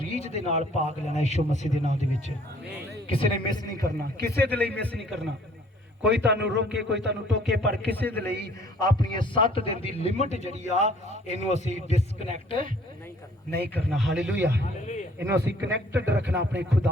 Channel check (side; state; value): both; normal; correlation 0.57